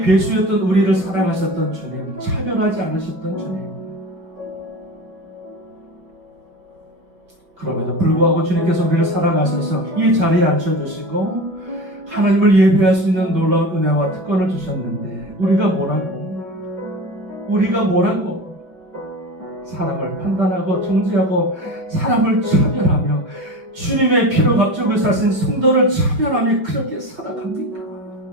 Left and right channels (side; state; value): left; late; 5.6 ms